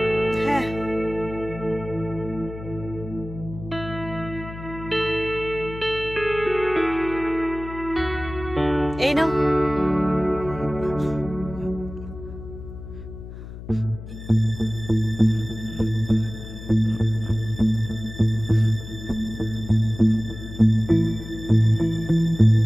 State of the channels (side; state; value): left; noise; hum, 12 dB below the sound